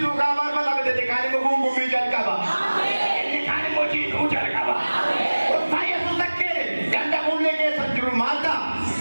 kabar apa tapi detikali menggumbu bijan kabar. Ujar kaba. Saya sudah kere. Ganda mulai ke sanjuru mata.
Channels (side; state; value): both; inverted; correlation -1.00